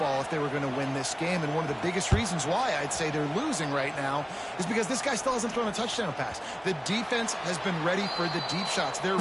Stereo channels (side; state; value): both; identical; correlation 1.00